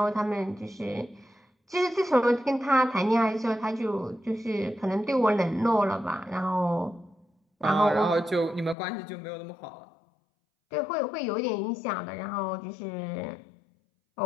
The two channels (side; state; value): right; drops out; at 8.8 s